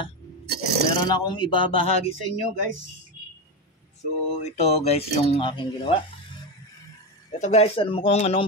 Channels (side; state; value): both; normal; correlation 0.14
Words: meron akong ibabahagi sa inyo guys. So ito guys yung aking ginawa. Ito guys, alam mo kung